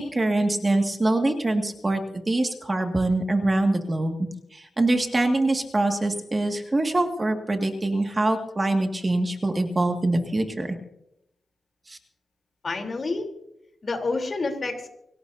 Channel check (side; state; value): both; normal; correlation 0.96